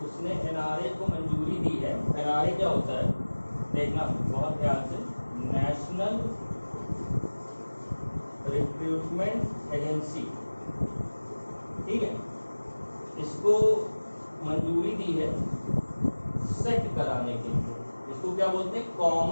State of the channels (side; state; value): both; inverted; correlation -1.00